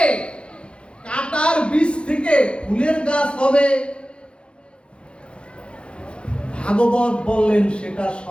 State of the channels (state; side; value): late; right; 0.057 ms